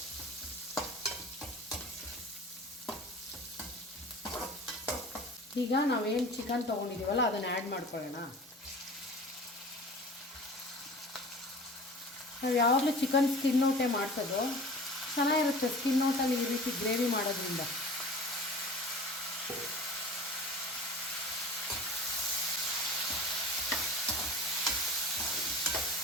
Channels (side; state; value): both; normal; correlation 0.40